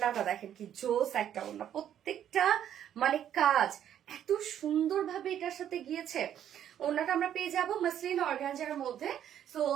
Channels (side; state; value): left; quieter; 10.2 dB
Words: দেখেন কি জোস একটা ওড়না, প্রত্যেকটা মানে কাজ এত সুন্দরভাবে এটার সাথে গিয়েছে। ওড়নাটা আমরা পেয়ে যাবো মাসলিন অর্গানজার মধ্যে। সো